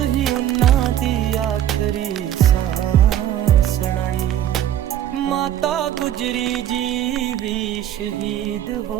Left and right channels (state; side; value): quieter; left; 11.3 dB